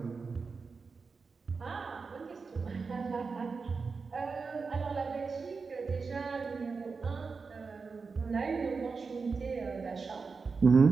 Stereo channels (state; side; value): quieter; left; 4.7 dB